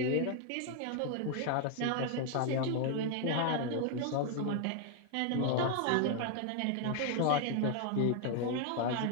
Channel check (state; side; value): different; both; correlation 0.01